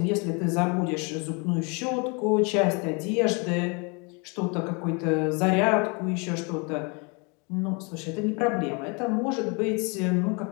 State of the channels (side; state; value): right; quieter; 31.8 dB